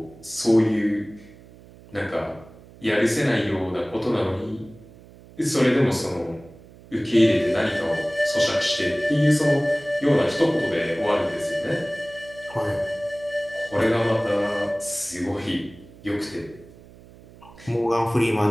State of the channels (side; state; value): right; noise; hum, 22 dB below the sound